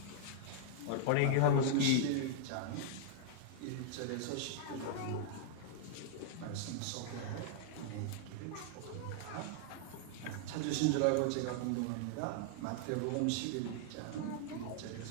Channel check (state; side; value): different; both; correlation -0.01